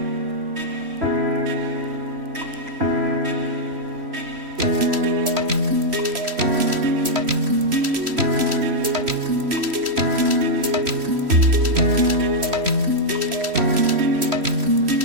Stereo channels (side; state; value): left; late; 3.1 ms